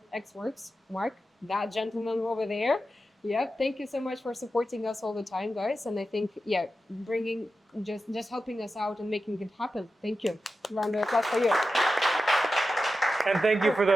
XWorks, Mark, that gentleman over there. Yeah, thank you so much for supporting us all the time, guys. And I think, yeah, bringing, just helping us out and making it happen. Thank you. Round of applause for you. And thank you for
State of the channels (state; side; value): normal; both; correlation 0.91